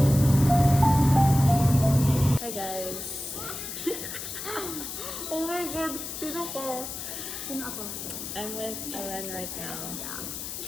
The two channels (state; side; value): noise; left; hiss, 7 dB below the sound